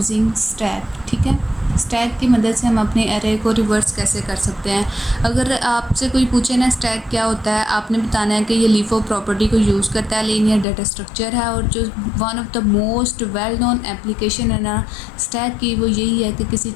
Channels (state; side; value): drops out; right; at 10.7 s